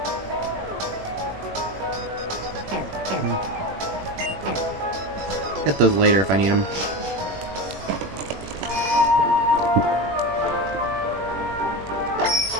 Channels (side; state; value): left; late; 21 ms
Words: Get those later if I need them.